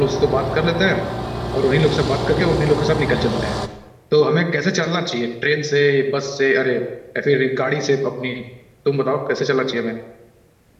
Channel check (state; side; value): identical; both; correlation 1.00